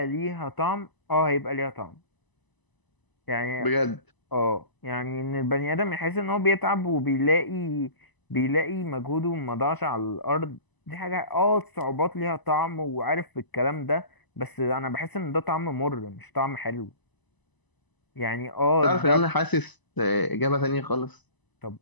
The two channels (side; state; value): right; late; 1.0 ms